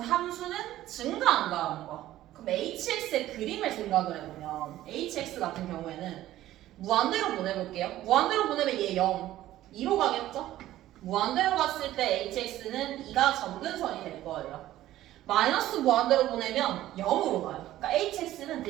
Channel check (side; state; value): left; quieter; 14.3 dB